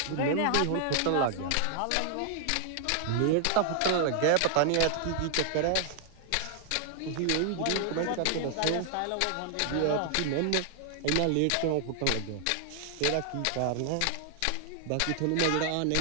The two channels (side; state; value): both; different; correlation 0.00